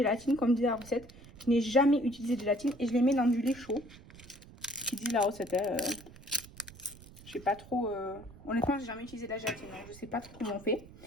comme dit la recette. Je n'ai jamais utilisé de gélatine et je les mets dans du lait chaud. Qui dit la recette, je sais pas trop. Honnêtement, j'ai jamais utilisé de la gélatine, donc je sais pas trop comment on fait.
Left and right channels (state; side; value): noise; right; rumble, 20 dB below the sound